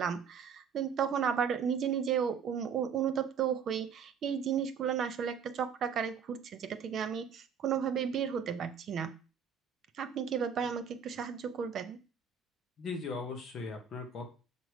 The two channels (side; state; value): left; quieter; 6.9 dB